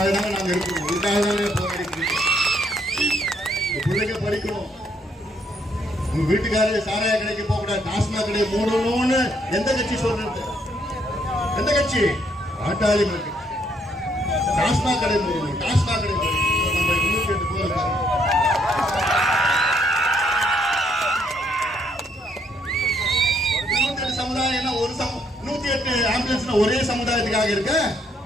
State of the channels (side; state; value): both; normal; correlation 0.70